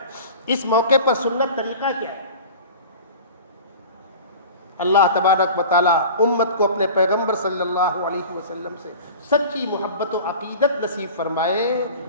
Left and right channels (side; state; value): both; inverted; correlation -0.38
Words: اس موقع پر سنت طریقہ کیا ہے۔ اللہ تبارک و تعالیٰ امت کو اپنے پیغمبر صلی اللہ علیہ وسلم سے سچی محبت و عقیدت نصیب فرمائے،